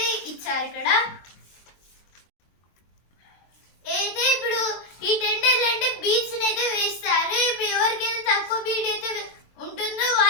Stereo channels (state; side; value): late; right; 23 ms